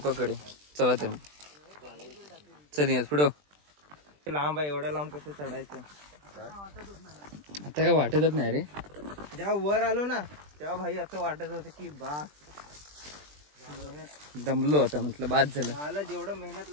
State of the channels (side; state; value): left; late; 20 ms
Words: चला तर चल या पुढं. लांब आहे, एवढं लांब कसं चढायचं आता काय वाटतच नाही रे. जेव्हा वर आलो ना तेव्हा भाई असं वाटत होतं की बास दमलो आता, म्हटलं बाद झालं. मला जेवढं मेहनत